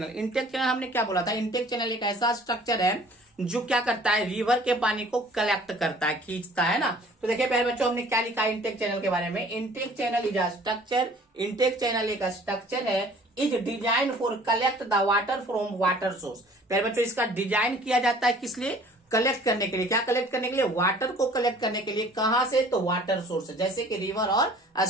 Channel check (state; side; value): normal; both; correlation 0.51